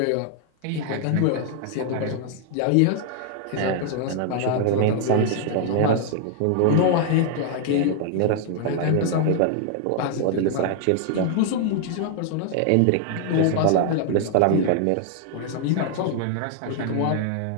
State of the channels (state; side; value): different; both; correlation 0.00